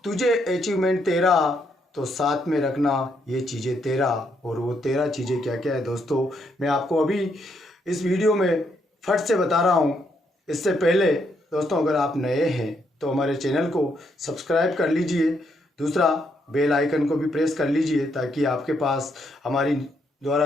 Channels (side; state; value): both; normal; correlation 0.75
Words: तुझे अचीवमेंट तेरा, तो साथ में रखना ये चीज़ें तेरा। और वो तेरा चीज़ें क्या क्या है दोस्तों, मैं आपको अभी इस वीडियो में फट से बता रहा हूँ। इससे पहले दोस्तों, अगर आप नए हैं तो हमारे चैनल को सब्सक्राइब कर लीजिए, दूसरा बेल आइकन को भी प्रेस कर लीजिए, ताकि आपके पास हमारी